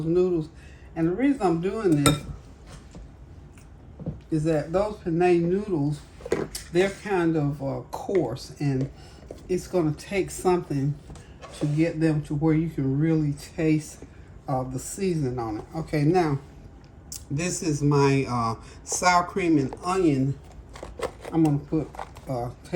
noodles? And the reason I'm doing this is that those penne noodles, they're kind of coarse, and it's going to take something to get them to where you can really taste the seasoning on it. Okay, now this is my sour cream and onion. I'm going to put a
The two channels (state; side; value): identical; both; correlation 1.00